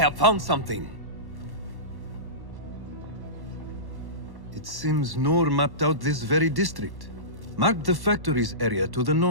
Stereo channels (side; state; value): left; late; 1.1 ms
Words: found something. It seems Noor mapped out this very district. Mark the factories area to the